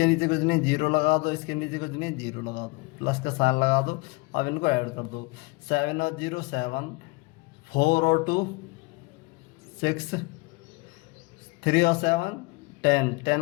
नीचे कुछ नहीं, 0 लगा दो। इसके नीचे कुछ नहीं, 0 लगा दो, प्लस का साइन लगा दो। अब इनको ऐड कर दो। 7 और 0 7, 4 और 2 6, 3 और 7 10,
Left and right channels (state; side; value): quieter; right; 24.6 dB